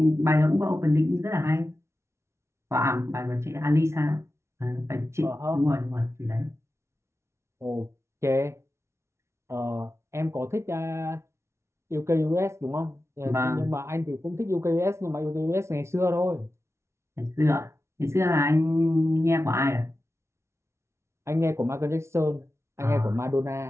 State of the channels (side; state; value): left; late; 0.13 ms